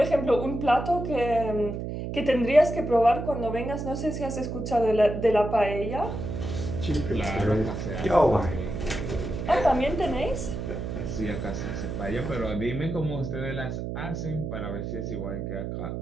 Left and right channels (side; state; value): right; noise; hum, 5 dB below the sound